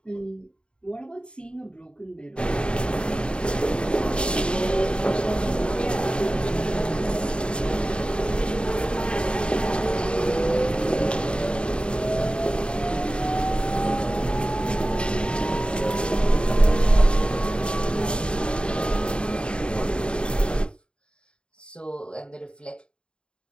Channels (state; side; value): late; right; 0.053 ms